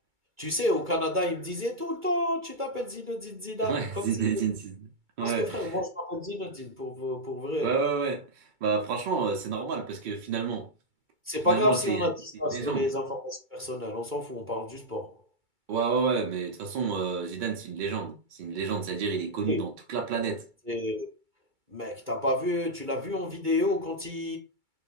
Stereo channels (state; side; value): late; left; 2.3 ms